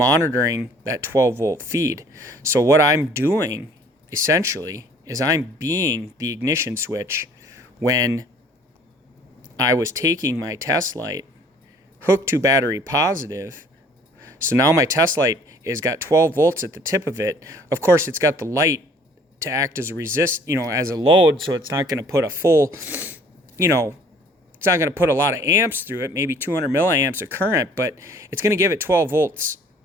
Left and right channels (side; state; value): both; normal; correlation 0.55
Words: that 12-volt feed. So what I'm doing, essentially, is I'm being the ignition switch when I was taking my test light, hooked to battery positive. So now my test light has got 12 volts at the tip of it. Of course, it's got the light to act as a as a load, so it's not going to put a full, it's not going to put a lot of amps through it, maybe 200 milliamps of current, but it's going to give it 12 volts